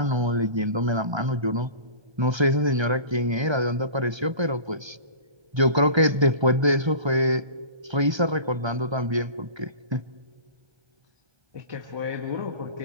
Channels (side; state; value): left; late; 1.3 ms